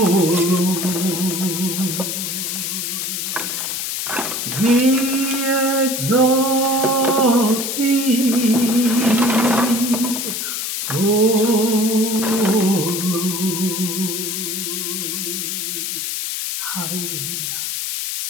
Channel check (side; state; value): left; noise; hiss, 3 dB below the sound